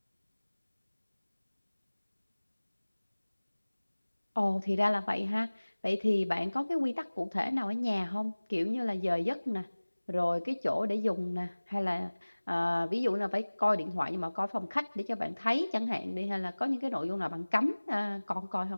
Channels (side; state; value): both; inverted; correlation -1.00